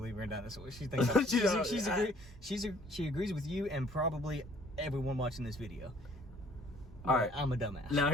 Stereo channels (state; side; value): normal; both; correlation 0.58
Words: in dinosaurs. She thinks she agrees with you and probably everyone watching this video. All right, I'm a dumbass.